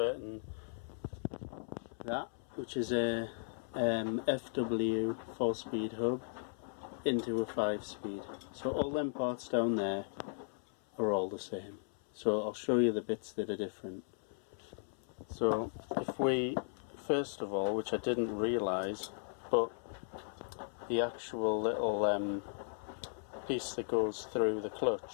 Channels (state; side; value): silent; right; 53 dB below the other